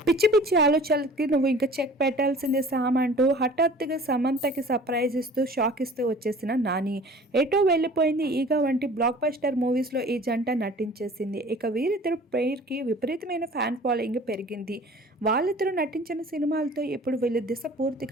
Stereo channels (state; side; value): normal; both; correlation 0.46